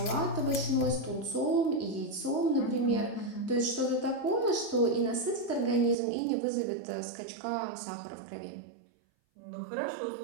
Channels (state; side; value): drops out; left; at 6.0 s